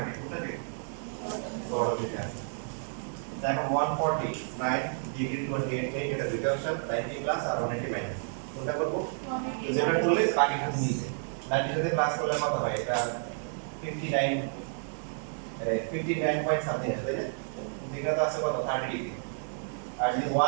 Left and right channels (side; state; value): left; silent; digital silence